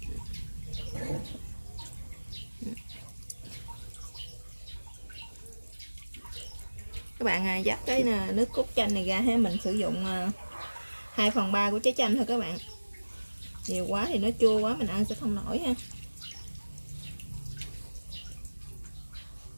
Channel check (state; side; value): inverted; both; correlation -1.00